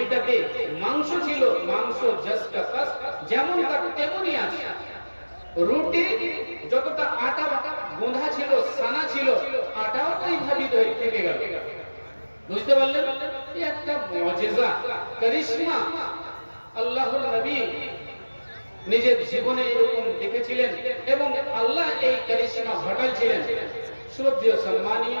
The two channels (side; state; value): both; inverted; correlation -1.00